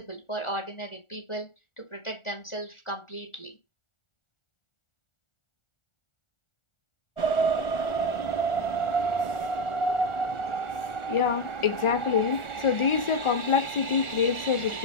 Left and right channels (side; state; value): right; late; 1.4 ms